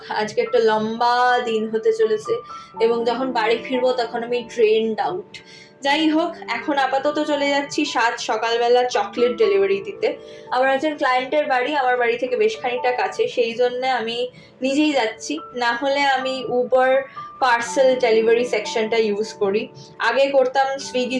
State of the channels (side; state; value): both; identical; correlation 1.00